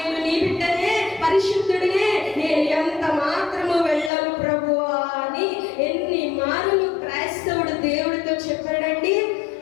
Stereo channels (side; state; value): right; drops out; at 4.1 s